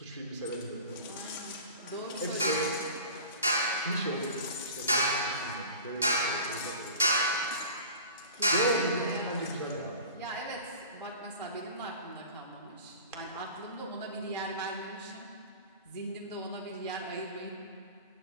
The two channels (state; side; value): inverted; both; correlation -0.40